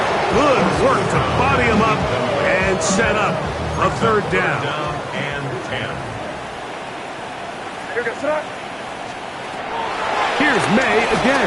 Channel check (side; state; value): both; identical; correlation 1.00